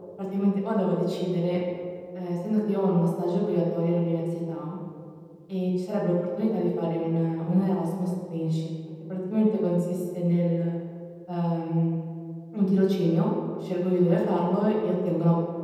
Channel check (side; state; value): both; identical; correlation 1.00